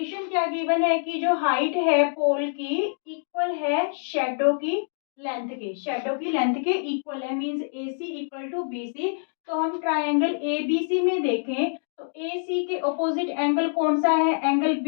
क्या गिवन है कि जो हाइट है पोल की इक्वल है शेडो की लेंथ के, शेडो की लेंथ के इक्वल है, means A C equal to B C. तो हम ट्रायंगल ए बी सी में देखें तो ए सी के ऑपोजिट एंगल कौन सा है, एंगल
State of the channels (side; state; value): right; silent; digital silence